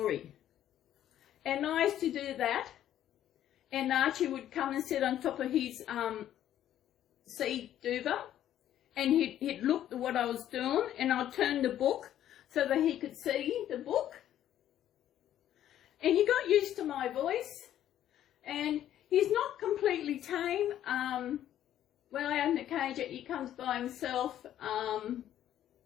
And I used to do that, and Archie would come and sit on top of his seed duver, and he'd look at what I was doing, and I'd turn the book so that he could see the book. And he got used to my voice, and he's not completely tame. When I open the cage, he comes by himself,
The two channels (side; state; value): right; quieter; 11.6 dB